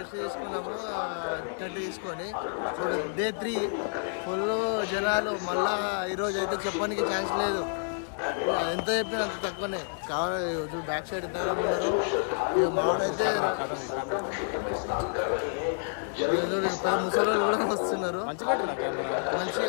తీసుకున్నాము టెంట్ తీసుకొని. ఇప్పుడు డే 3 ఫుల్ జనాలు. మళ్ళా ఈరోజు అయితే చెప్పడానికి ఛాన్స్ లేదు, ఎంత చెప్పినా అంత తక్కువనే కావాలి. బ్యాక్ సైడ్ ఎంత ఉన్నారు ఇక మావాడైతే పెద్ద ముసలి కూడా వస్తున్నారు.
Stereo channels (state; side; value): silent; right; digital silence